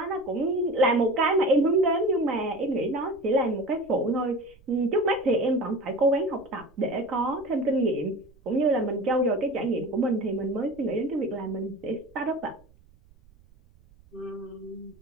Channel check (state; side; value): noise; right; rumble, 28 dB below the sound